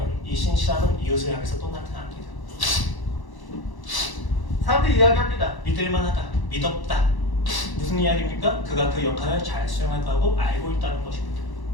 이 신실함은 이웃을 향해서 또 나타납니다. 사람들이 이야기합니다. 믿을만하다, 믿었다. 무슨 이야기입니까? 그가 그 역할을 잘 수행할 거라고 알고 있다는 것입니다.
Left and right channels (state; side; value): late; right; 1.0 ms